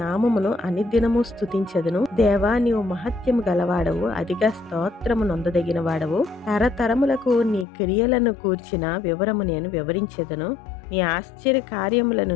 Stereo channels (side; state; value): right; drops out; at 7.7 s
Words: అనుదినము స్తుతించెదను. దేవా, నీవు మహత్యము గలవాడవు, అధిక స్తోత్రము నొందదగిన వాడవు. తరతరములకు నీ క్రియలను కూర్చిన వివరము నేను వివరించెదను. నీ ఆశ్చర్య కార్యములను